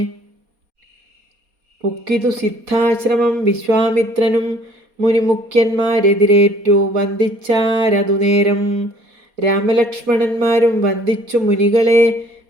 പുക്കിതു സിദ്ധാശ്രമം വിശ്വാമിത്രനും മുനിമുഖ്യന്മാരെതിരേറ്റു വന്ദിച്ചാരതു നേരം. രാമലക്ഷ്മണന്മാരും വന്ദിച്ചു മുനികളെ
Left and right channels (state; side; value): late; left; 4.2 ms